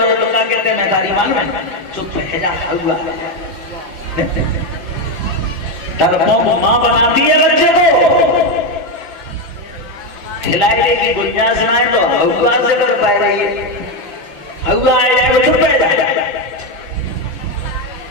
तो क्या कहते हैं? नकारी मालूम है? चुप है जा हुआ। डरपोक मां बनाती है बच्चे को, खिलाई देगी, गुंजाइश सुनाए तो हुआ से कर पाए रही है। हुआ आ जाए तो चुप है जाए।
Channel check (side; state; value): left; late; 5.9 ms